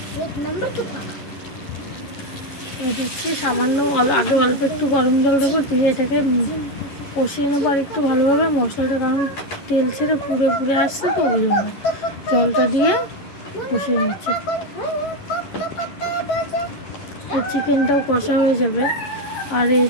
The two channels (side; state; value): right; late; 11 ms